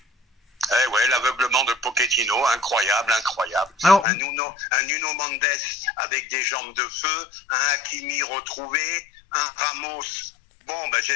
Eh ouais, l'aveuglement de Pochettino, incroyable. Alors, Un Nuno Mendes avec des jambes de feu, un Hakimi retrouvé. un Ramos. Bon, ben,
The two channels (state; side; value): drops out; right; at 4.0 s